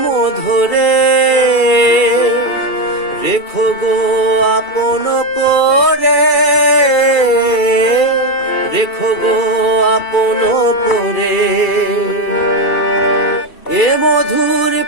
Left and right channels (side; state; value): right; late; 2.3 ms